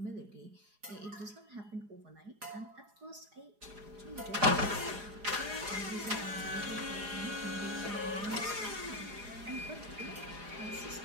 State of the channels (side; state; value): left; late; 4.9 ms